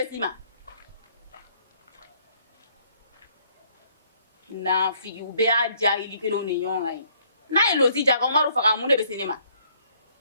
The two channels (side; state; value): both; inverted; correlation -0.64